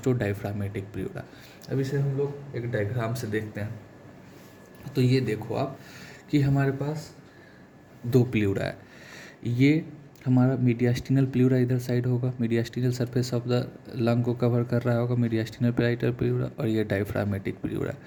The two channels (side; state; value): both; identical; correlation 1.00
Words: डायफ्रामेटिक प्लूरा। अब इसे हम लोग एक डायग्राम से देखते हैं। तो ये देखो आप कि हमारे पास 2 प्लूरा है, ये हमारा मीडियास्टिनल प्लूरा इधर साइड होगा, mediastinal surface of the lung को कवर कर रहा होगा मीडियास्टिनल पेराइटल प्लूरा, और ये डायफ्रामेटिक प्लूरा।